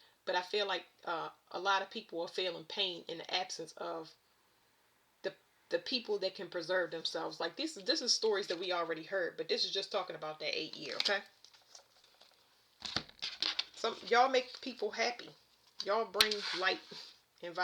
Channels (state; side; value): identical; both; correlation 1.00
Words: But I feel like a lot of people are feeling pain in the absence of the people that can preserve themselves. Like, this is stories that we already heard, but this is just talking about that 8 year. Okay. Y'all make people happy. Y'all bring light and